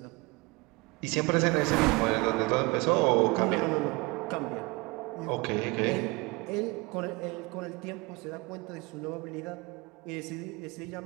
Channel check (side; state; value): left; quieter; 25.7 dB